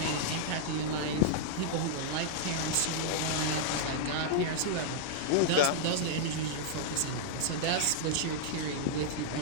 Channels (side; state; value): both; different; correlation -0.02